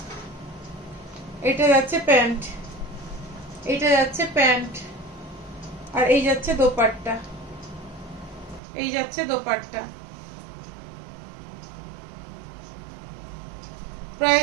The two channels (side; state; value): left; drops out; at 8.6 s